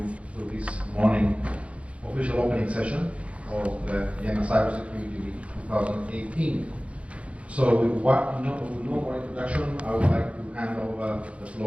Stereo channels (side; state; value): left; late; 0.063 ms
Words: through this morning official opening session of the Vienna Cybersecurity Week 2018. So with no more introduction, I would like to hand over the